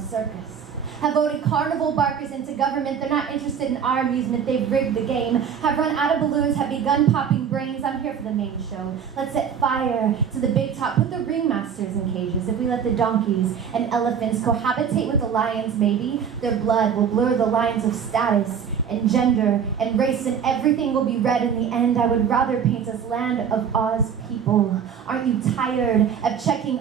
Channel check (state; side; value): quieter; left; 7.5 dB